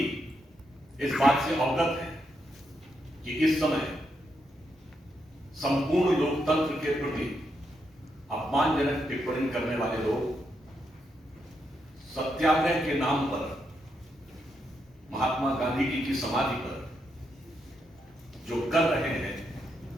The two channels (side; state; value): both; normal; correlation 0.81